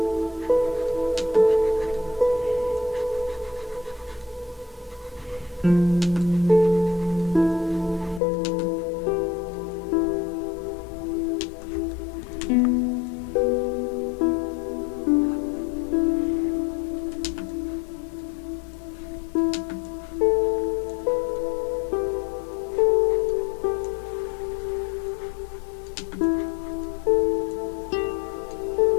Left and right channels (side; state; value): right; drops out; at 8.2 s